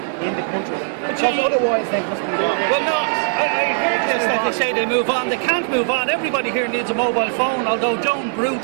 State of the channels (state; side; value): silent; left; digital silence